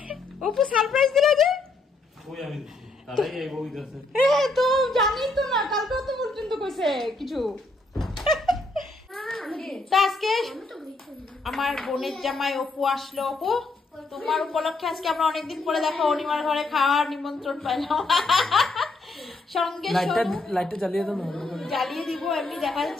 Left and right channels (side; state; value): right; quieter; 3.2 dB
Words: অপু সারপ্রাইজ দিলা যে কই আমি তারাই এই বই দিছে তো জানি তো না কালকে তো পর্যন্ত কইছে কিছু আজকে আমার বোনের জামাই অপু আসলো অপু তোমার উপলক্ষে আজকে আমরা অনেকদিন পরে দেখো অনিমার ঘরে খাওয়ার নিমন্ত্রণ পাইলাম সঙ্গে লাইটটা জ্বালিয়ে দাও না জ্বালিয়ে দিব এমনি দেখা